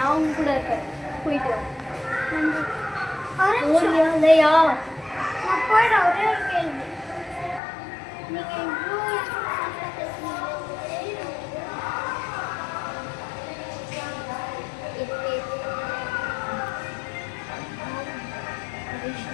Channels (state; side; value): drops out; right; at 7.6 s